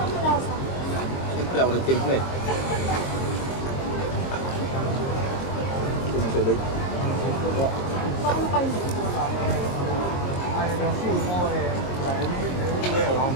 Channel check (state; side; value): late; right; 22 ms